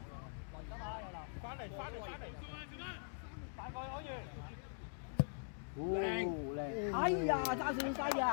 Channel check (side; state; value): right; silent; digital silence